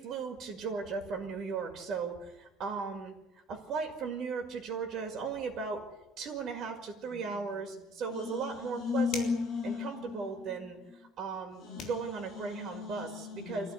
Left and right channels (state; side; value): normal; both; correlation 0.53